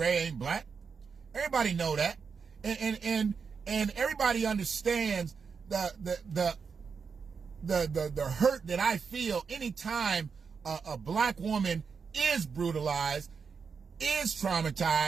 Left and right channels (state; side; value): quieter; left; 5.7 dB